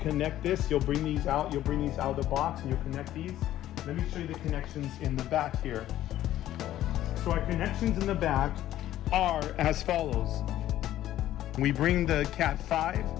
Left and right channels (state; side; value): quieter; right; 13.2 dB